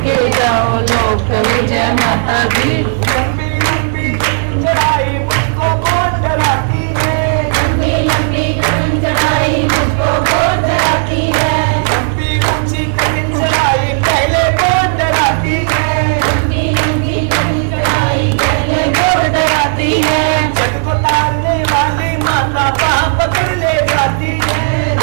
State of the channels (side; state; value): left; silent; digital silence